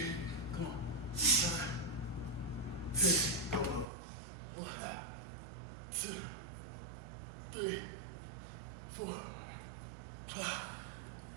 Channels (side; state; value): left; drops out; at 3.9 s